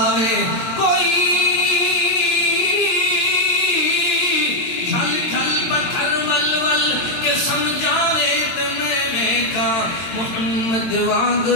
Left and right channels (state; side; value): late; right; 22 ms